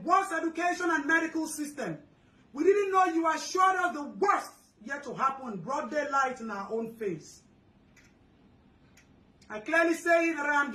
education and medical system. We didn't know you assured us the worst yet to happen, broad daylight in our own face. I clearly say that I am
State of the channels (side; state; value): both; identical; correlation 1.00